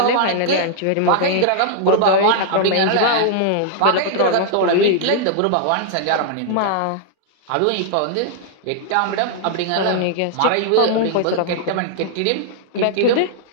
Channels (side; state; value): both; different; correlation -0.01